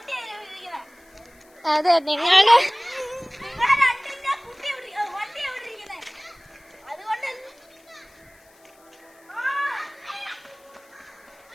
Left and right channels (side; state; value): left; noise; hiss, 30 dB below the sound